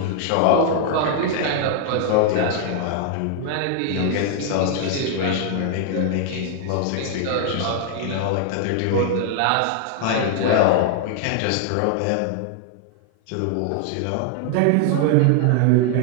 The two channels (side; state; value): both; different; correlation 0.00